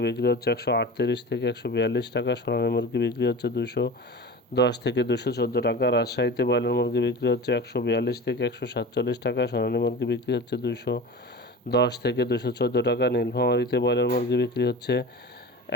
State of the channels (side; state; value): both; normal; correlation 0.33